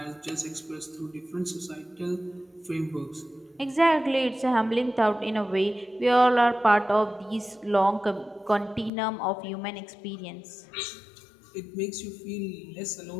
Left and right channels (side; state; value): right; drops out; at 8.9 s